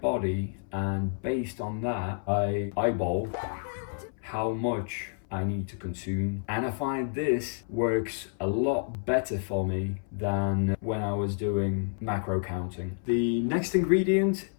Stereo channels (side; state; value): right; silent; 58 dB below the other